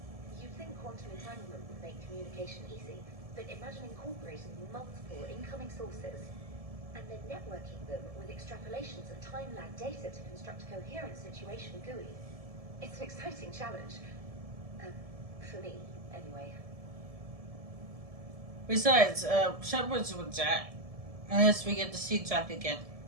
you'd think quantum entanglement would make communication easy, but imagine incorporating multiple incoming sources and then networking them with extrapolations of time-lag data to construct a coherent situation GUI. It's an exciting challenge. For me, anyway. Besides, Shepard's with Jack. Unless we get to see Jack again.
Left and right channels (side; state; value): left; late; 1.7 ms